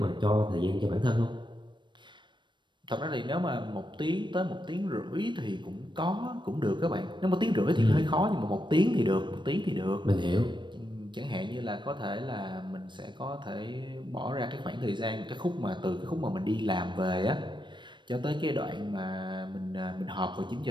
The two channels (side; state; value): left; late; 0.22 ms